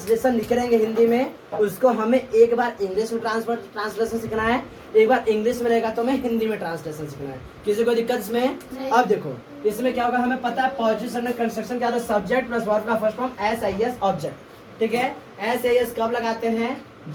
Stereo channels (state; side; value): identical; both; correlation 1.00